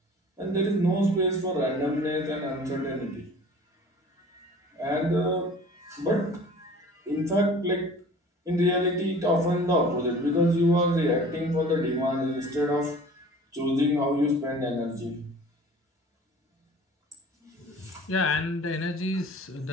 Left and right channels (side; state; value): both; normal; correlation 0.45